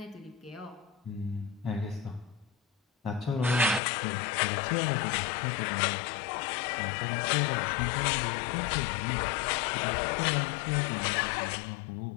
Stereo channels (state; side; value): drops out; right; at 3.8 s